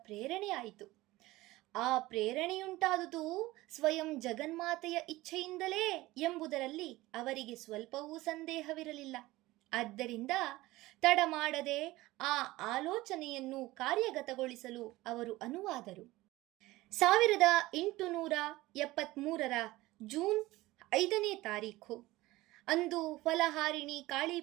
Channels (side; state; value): left; quieter; 18.6 dB